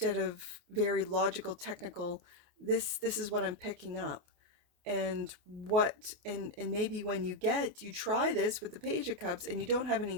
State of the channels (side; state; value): left; late; 28 ms